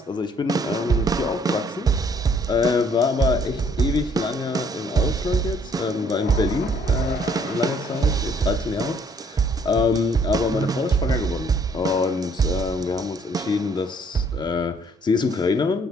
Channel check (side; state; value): both; normal; correlation 0.63